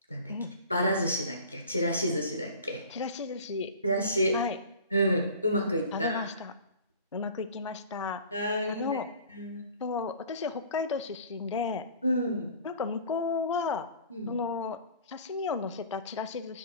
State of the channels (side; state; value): both; inverted; correlation -0.44